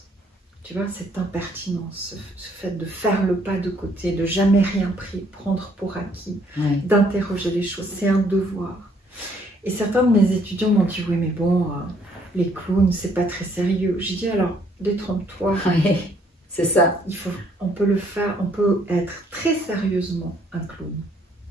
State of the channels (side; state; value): both; normal; correlation 0.66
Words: Tu vois, cette impertinence, ce fait de faire le pas de côté, de jamais rien prendre pour acquis, d'interroger les choses, c'est un devoir. Et certains de mes étudiants m'ont dit, oui mais bon, les clowns, c'est pas très sérieux. J'ai dit, alors, détrompe-toi. C'est ça. On peut le faire, on peut être très sérieusement un clown.